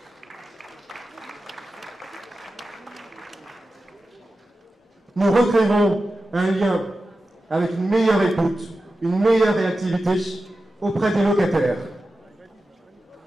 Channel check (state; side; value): normal; both; correlation 0.93